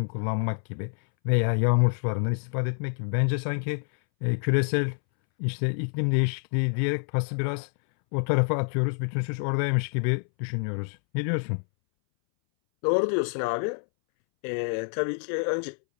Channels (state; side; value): silent; right; 60 dB below the other